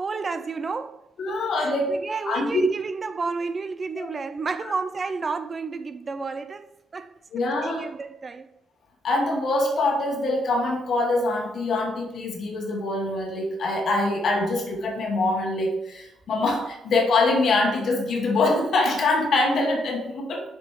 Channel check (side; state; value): both; normal; correlation 0.74